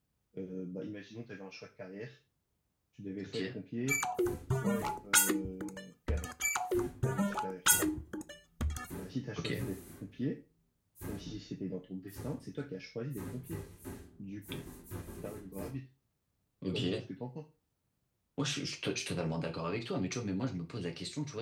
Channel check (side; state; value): both; identical; correlation 1.00